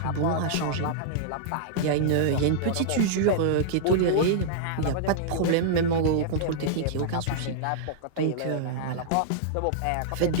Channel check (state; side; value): different; both; correlation -0.01